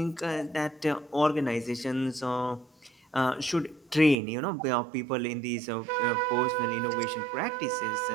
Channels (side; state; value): left; drops out; at 4.2 s